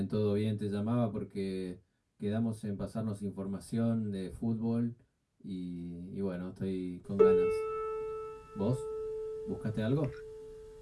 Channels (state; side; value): identical; both; correlation 1.00